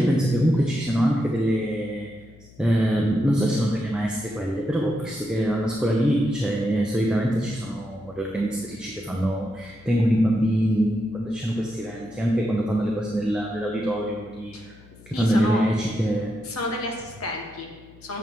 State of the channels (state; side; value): noise; left; hum, 23 dB below the sound